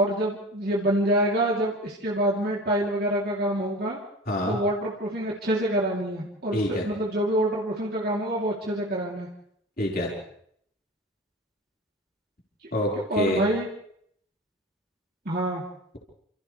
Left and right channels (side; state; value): both; normal; correlation 0.35